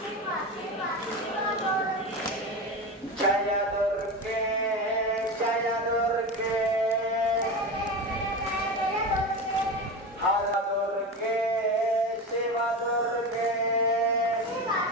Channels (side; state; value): both; normal; correlation 0.23